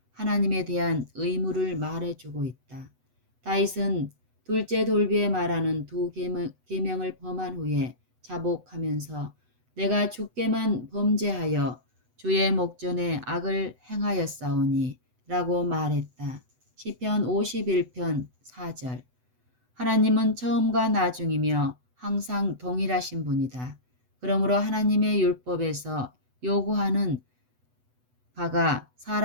하나님에 대한 의무를 말해주고 있다. 다윗은 둘째 돌비에 말하는 두 계명을 범한 후에 자복하면서 내가 주께만 범죄하여 주의 목전에 악을 행하였사오니 라고 말했다. 시편 51편 4절. 하나님은 처음과 나중이며 항상 동일하신 분이다. 그러므로 하나님의 율법에서 요구하는 바가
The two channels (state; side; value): late; left; 8.0 ms